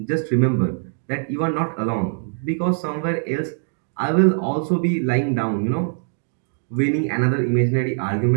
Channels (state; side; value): silent; left; digital silence